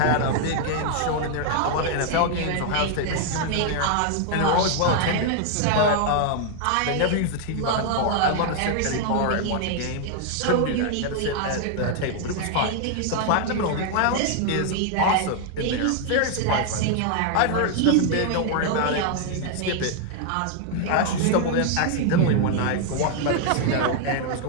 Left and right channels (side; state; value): both; different; correlation 0.00